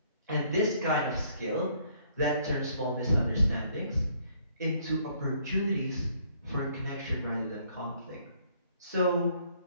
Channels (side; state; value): both; inverted; correlation -0.65